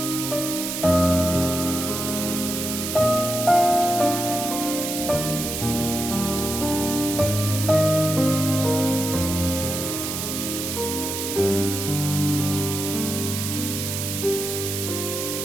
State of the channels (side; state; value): right; noise; hiss, 4 dB below the sound